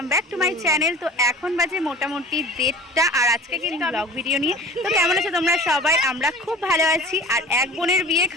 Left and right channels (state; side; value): normal; both; correlation 0.40